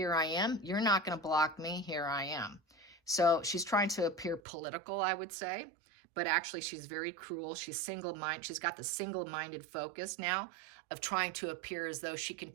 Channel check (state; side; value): drops out; left; at 4.4 s